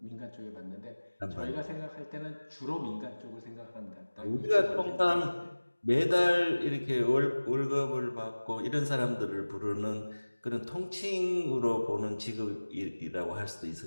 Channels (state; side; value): inverted; both; correlation -1.00